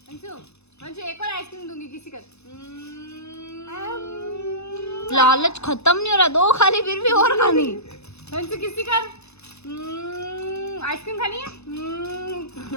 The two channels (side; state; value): right; late; 0.80 ms